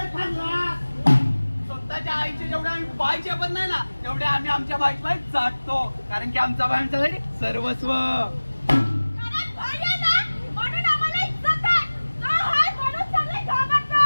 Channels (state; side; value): inverted; both; correlation -1.00